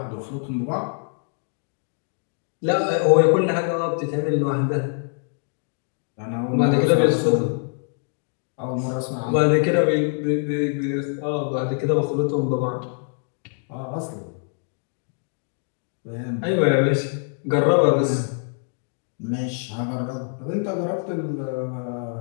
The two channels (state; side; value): silent; right; 55 dB below the other